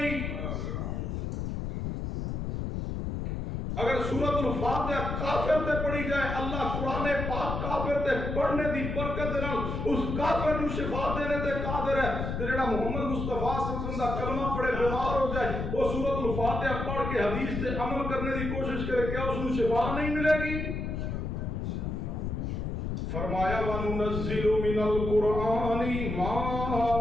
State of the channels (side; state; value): left; noise; rumble, 3 dB below the sound